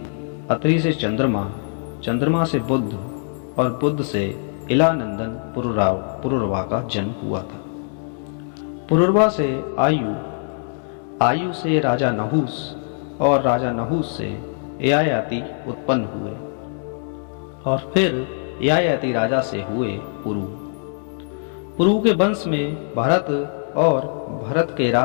अत्रि से चंद्रमा, चंद्रमा से बुध और बुध से इलानंदन पुरुरवा का जन्म हुआ था। पुरुरवा से आयु, आयु से राजा नहुस और राजा नहुस से ययाति उत्पन्न हुए और फिर ययाति राजा से हुए पुरु। पुरु के वंश में भरत और भरत के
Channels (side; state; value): right; silent; digital silence